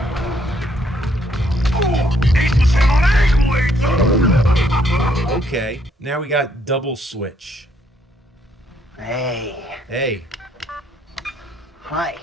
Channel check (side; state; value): both; normal; correlation 0.70